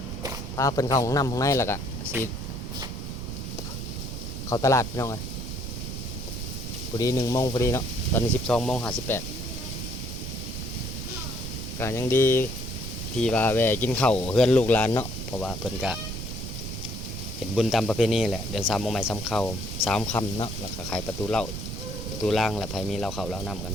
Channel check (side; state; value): right; noise; rumble, 6 dB below the sound